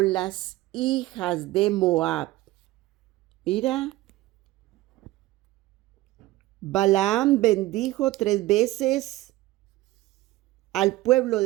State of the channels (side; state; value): left; quieter; 17.5 dB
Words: las hijas de Moab. Mira, Balaam bendijo 3 veces al pueblo